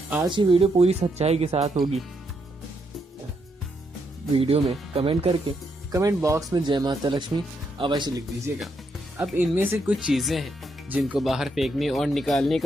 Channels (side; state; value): both; normal; correlation 0.78